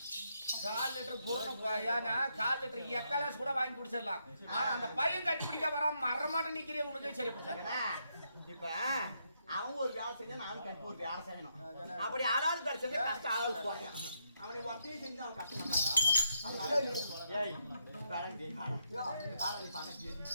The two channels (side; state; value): both; inverted; correlation -0.78